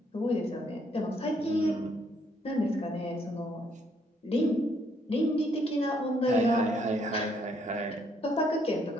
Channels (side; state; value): both; normal; correlation 0.70